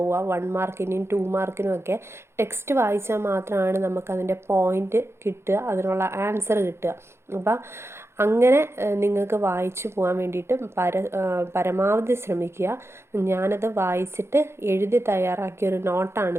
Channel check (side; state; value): left; late; 0.12 ms